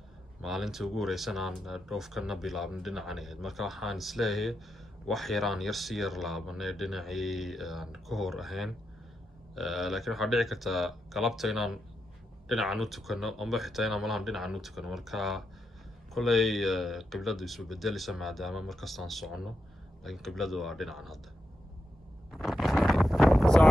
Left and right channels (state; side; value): normal; both; correlation 0.85